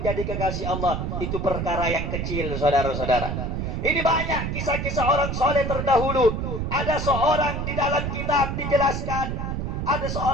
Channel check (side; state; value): right; noise; rumble, 2 dB below the sound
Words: kekasih Allah, itu perkara yang kecil, saudara-saudara. Ini banyak kisah-kisah orang soleh terdahulu. Ada seorang di dalam kitab dijelaskan, ada